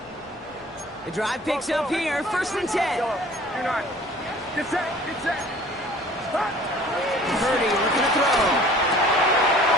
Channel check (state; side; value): normal; both; correlation 0.49